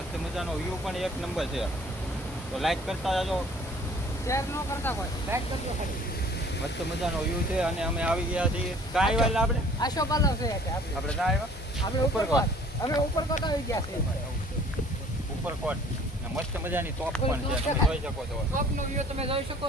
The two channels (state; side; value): normal; both; correlation 0.53